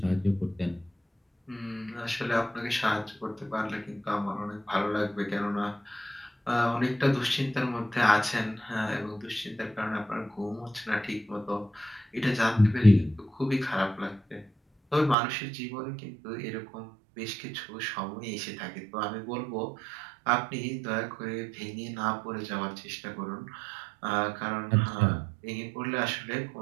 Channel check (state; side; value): drops out; left; at 15.2 s